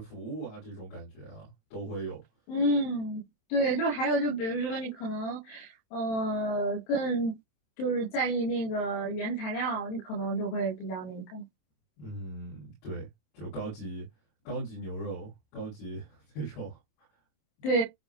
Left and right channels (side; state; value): right; late; 27 ms